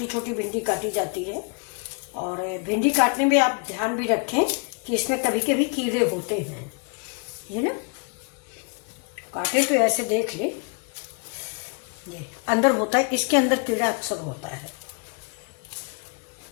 छोटी भिंडी काटी जाती है। और भिंडी काटने में आप ध्यान भी रखें कि इसमें कभी कभी कीड़े होते हैं, ये ना काटे तो ऐसे देख ले, ये अंदर होता है, इसके अंदर कीड़ा अक्सर होता है।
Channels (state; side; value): quieter; right; 35.8 dB